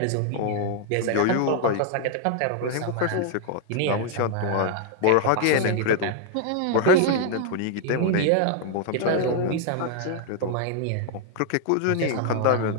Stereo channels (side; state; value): both; different; correlation 0.00